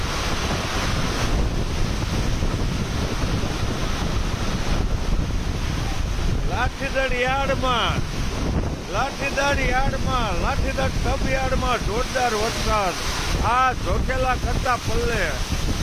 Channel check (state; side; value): identical; both; correlation 1.00